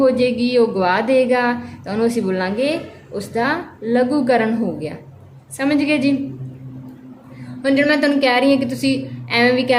ਜਾਏਗੀ, ਉਹ ਗਵਾ ਦੇਗਾ, ਤਾਂ ਉਹਨੂੰ ਅਸੀਂ ਬੋਲਾਂਗੇ ਉਸਦਾ ਲਘੂਕਰਨ ਹੋ ਗਿਆ। ਸਮਝ ਗਏ ਜੀ। ਹੁਣ ਜਿਹੜਾ ਮੈਂ ਤੁਹਾਨੂੰ ਕਹਿ ਰਹੀ ਹਾਂ ਕਿ ਤੁਸੀਂ ਐਵੇਂ ਵੀ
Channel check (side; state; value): both; identical; correlation 1.00